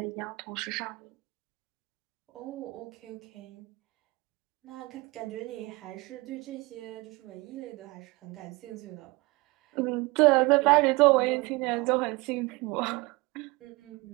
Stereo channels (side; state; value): left; quieter; 24.0 dB